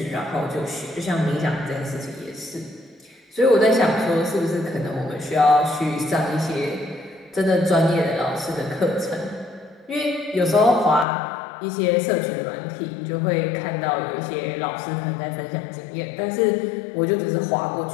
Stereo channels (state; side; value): drops out; right; at 11.1 s